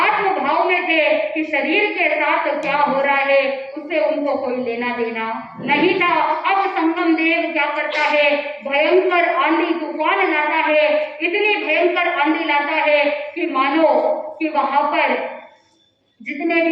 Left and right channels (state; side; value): identical; both; correlation 1.00